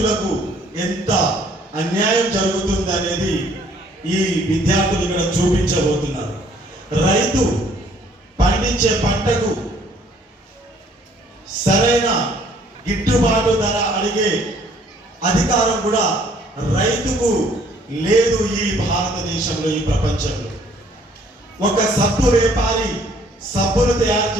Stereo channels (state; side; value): normal; both; correlation 0.61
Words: ఎంత అన్యాయం జరుగుతుంది అనేది ఈ విద్యార్థులు ఇక్కడ చూపించబోతున్నారు. రైతు పండించే పంటకు సరైన గిట్టుబాటు ధర అడిగే అధికారం కూడా రైతుకు లేదు ఈ భారతదేశంలో, ఈ ప్రపంచంలో. ఒక సబ్బు వ్యాపారి సబ్బులు తయారు